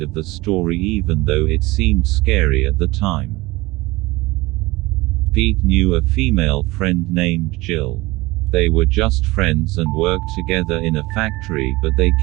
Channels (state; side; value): quieter; left; 20.9 dB